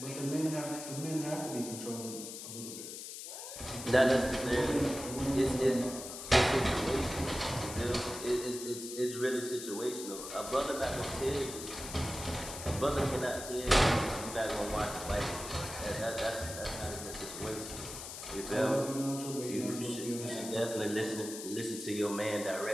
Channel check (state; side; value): noise; left; hiss, 9 dB below the sound